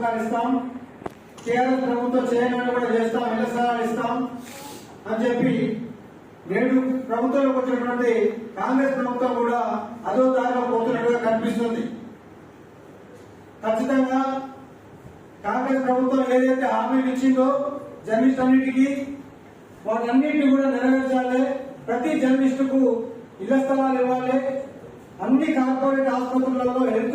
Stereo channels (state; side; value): identical; both; correlation 1.00